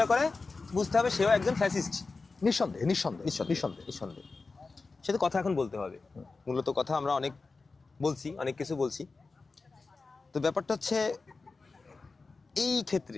করে বুঝতে হবে সেও একজন ফ্যাসিস্ট। নিঃসন্দেহে নিঃসন্দেহে নিঃসন্দেহে নিঃসন্দেহে সে তো কথা এখন বলতে হবে। মূলত কথা আমরা অনেক বলছি, অনেক কিছু বলছি। তো ব্যাপারটা হচ্ছে এই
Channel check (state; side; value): quieter; right; 4.0 dB